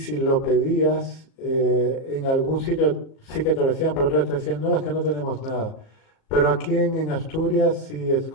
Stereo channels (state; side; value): late; right; 37 ms